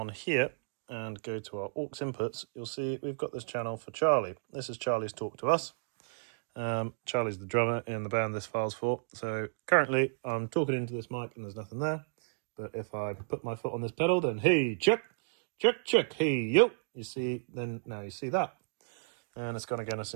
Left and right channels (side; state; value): left; silent; digital silence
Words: here and go to our aux inputs, you'll see we've got this channel for Charlie. This is Charlie's talk to us. Charlie's the drummer in the band this file's for. So currently I'm talking into this mic and there's nothing there. But if I put my foot on this pedal, then hey, check, check, check, hey, yo, you see, then now you see that. And it's gone again as